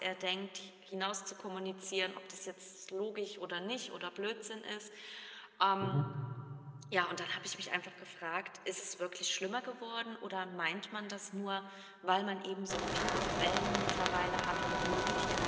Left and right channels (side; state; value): both; identical; correlation 1.00